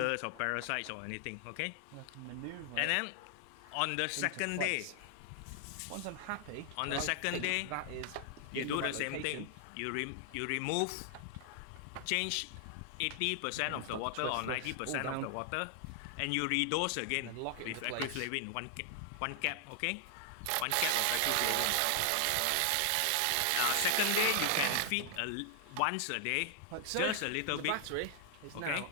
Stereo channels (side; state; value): both; different; correlation 0.00